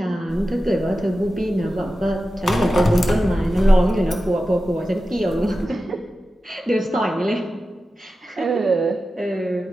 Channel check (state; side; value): normal; both; correlation 0.93